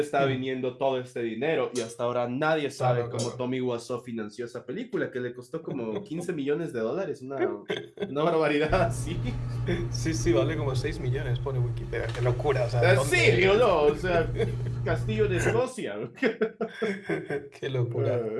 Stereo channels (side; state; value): both; identical; correlation 1.00